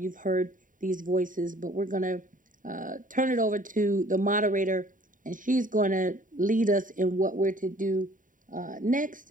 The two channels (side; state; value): left; late; 0.38 ms